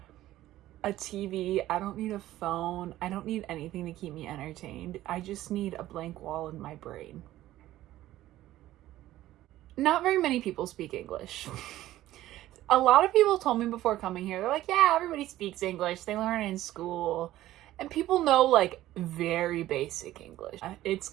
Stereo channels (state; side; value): quieter; left; 14.7 dB